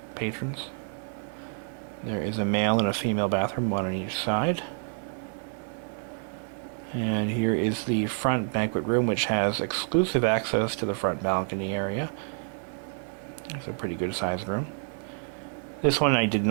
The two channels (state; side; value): silent; left; 59 dB below the other